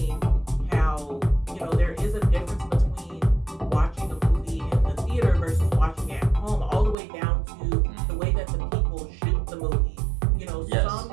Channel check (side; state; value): left; drops out; at 7.0 s